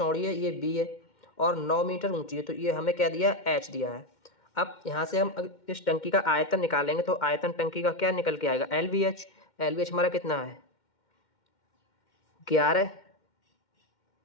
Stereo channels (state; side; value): late; right; 2.1 ms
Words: है, ये बी है, और 9 मीटर ऊंची है, तो ये हमें क्या दिया है एच दिया है। अब यहाँ से हम इस टंकी का आयतन निकालेंगे तो आयतन टंकी का क्या निकल के आएगा L V H. L V H हमारा कितना है 11